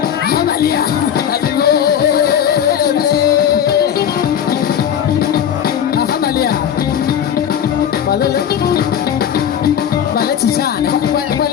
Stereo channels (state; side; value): quieter; right; 9.2 dB